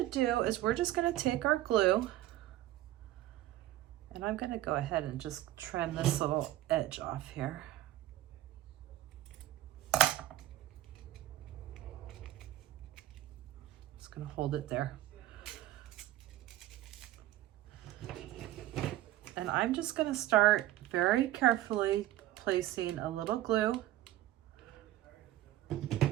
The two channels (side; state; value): left; quieter; 14.7 dB